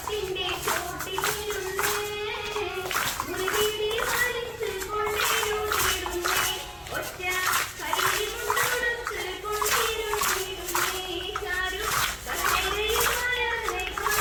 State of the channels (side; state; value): both; identical; correlation 1.00